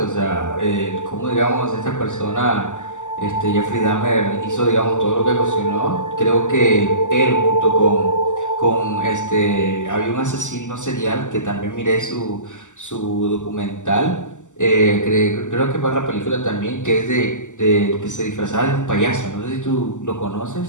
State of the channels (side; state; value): right; late; 0.85 ms